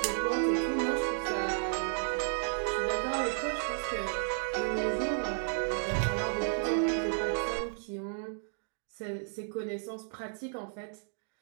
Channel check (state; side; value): silent; left; digital silence